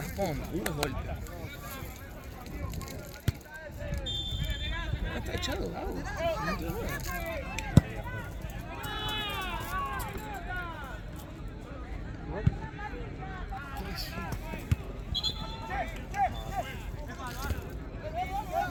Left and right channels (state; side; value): identical; both; correlation 1.00